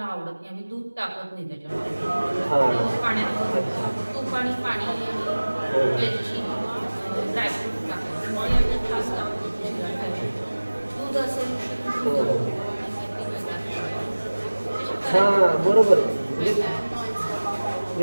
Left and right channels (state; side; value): inverted; both; correlation -1.00